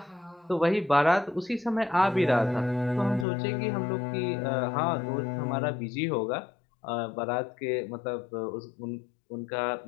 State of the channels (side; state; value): right; drops out; at 3.2 s